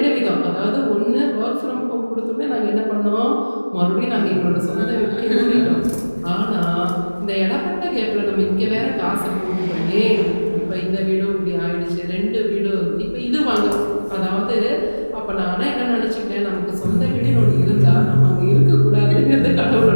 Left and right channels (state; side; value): inverted; both; correlation -1.00